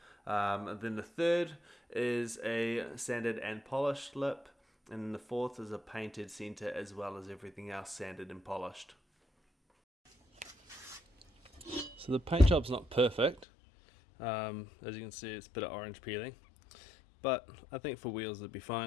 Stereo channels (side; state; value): right; drops out; at 13.5 s